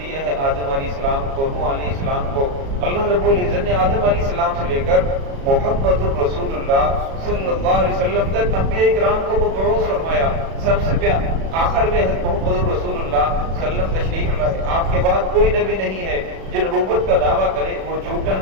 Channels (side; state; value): left; late; 36 ms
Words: ہے آدم علیہ السلام کو، نوح علیہ السلام کو۔ اللہ رب العزت نے آدم علیہ السلام سے لے کر محمد الرسول اللہ صلی اللہ علیہ وسلم تک انبیاء کرام کو مبعوث فرمایا۔ سب سے آخر میں محمد الرسول اللہ صلی اللہ علیہ وسلم تشریف لائے، آپ کے بعد کوئی نبی نہیں ہے جو نبوت کا دعویٰ کرے، وہ جھوٹا